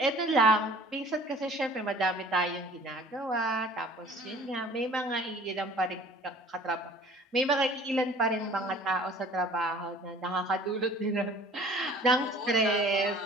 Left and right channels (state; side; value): normal; both; correlation 0.49